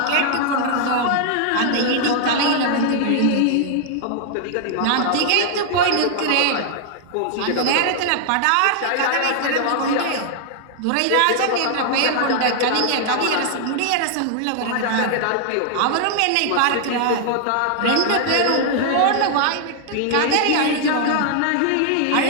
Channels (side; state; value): both; different; correlation 0.00